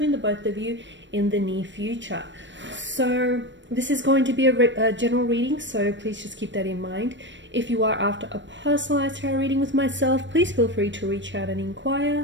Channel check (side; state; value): left; late; 0.53 ms